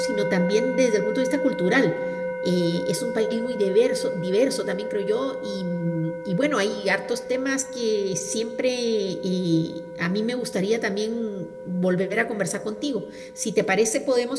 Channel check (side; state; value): both; identical; correlation 1.00